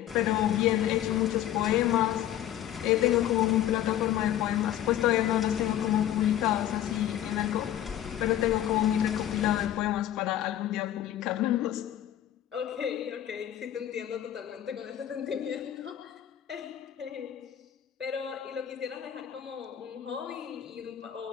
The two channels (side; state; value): right; quieter; 11.8 dB